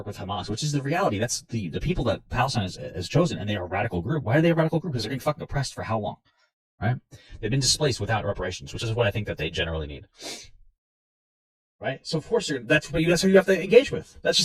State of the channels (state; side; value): identical; both; correlation 1.00